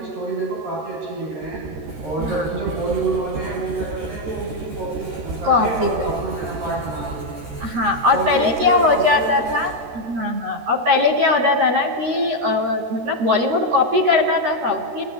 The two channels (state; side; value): late; left; 13 ms